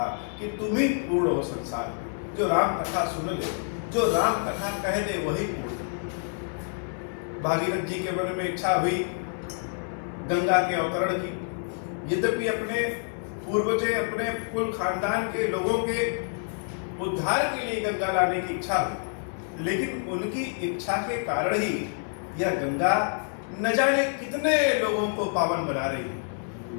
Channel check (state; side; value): silent; right; 60 dB below the other